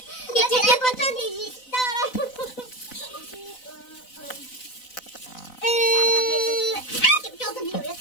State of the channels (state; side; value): late; right; 4.0 ms